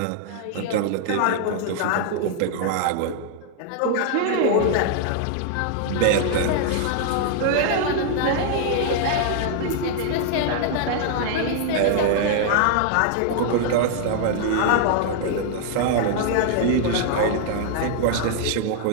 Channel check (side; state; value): both; different; correlation -0.01